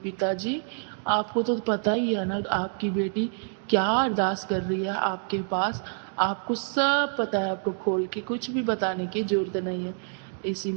पिताजी आपको तो पता ही है ना, आपकी बेटी क्या अरदास कर रही है आपके पास, आपको सब पता है, आपको खोल के कुछ भी बताने की जरूरत नहीं है।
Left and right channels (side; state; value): left; silent; digital silence